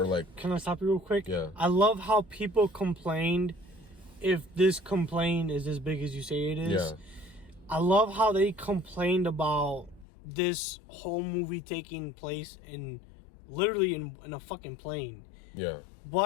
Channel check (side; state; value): right; drops out; at 10.1 s